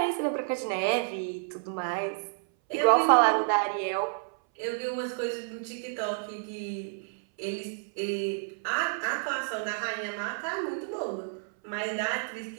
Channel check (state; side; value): silent; left; 58 dB below the other